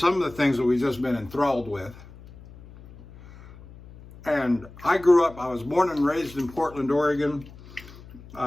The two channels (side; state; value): left; noise; hum, 19 dB below the sound